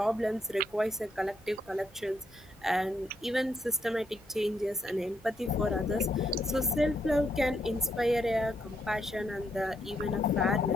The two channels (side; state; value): both; normal; correlation 0.76